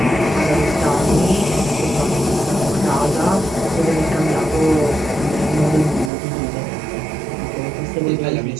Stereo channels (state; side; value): drops out; left; at 6.1 s